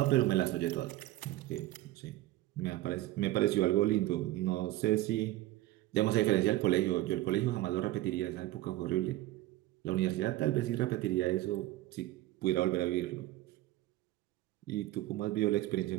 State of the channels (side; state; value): left; quieter; 16.4 dB